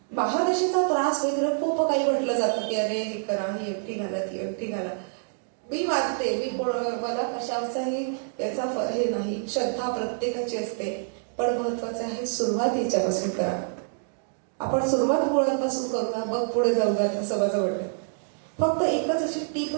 महादशेचा त्रास वगैरे खूप काही म्हटलं जातं की अरे हे करा, ही एकटी घाला, ती एकटी घाला. मी मानते, मला कशाचाही याचा हे नाही, श्रद्धा प्रत्येकाची असते, पण महत्वाचं आहे सुरुवात याच्यापासून करा. आपण सुरुवात मुळांपासून करू ना, मग पुढे जाऊ द्या असं माझं वाटतं. फक्त एकच अशी टीप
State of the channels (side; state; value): left; silent; digital silence